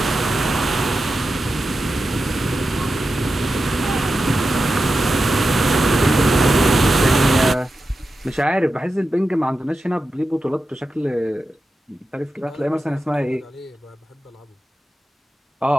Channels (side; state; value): both; normal; correlation 0.91